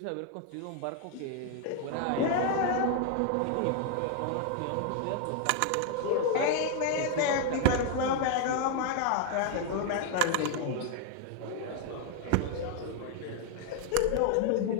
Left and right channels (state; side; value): different; both; correlation 0.00